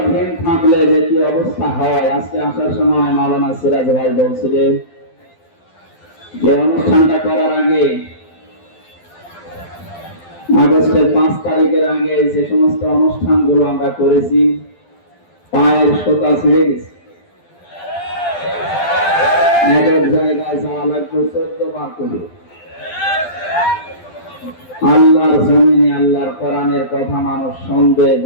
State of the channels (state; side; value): late; right; 12 ms